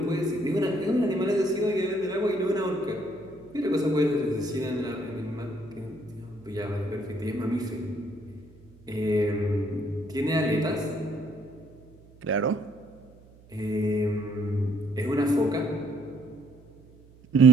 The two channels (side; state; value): right; noise; hum, 25 dB below the sound